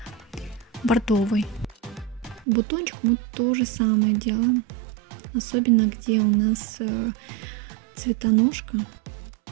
бордовый. Бутончик мы то же самое делаем, особенно где у нас цветоножка,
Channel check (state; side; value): drops out; left; at 2.5 s